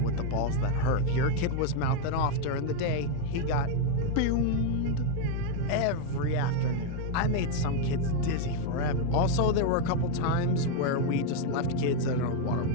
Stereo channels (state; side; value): different; both; correlation 0.00